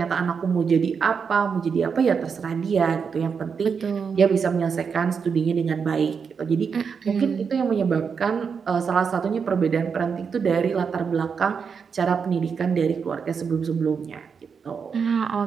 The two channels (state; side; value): quieter; left; 6.1 dB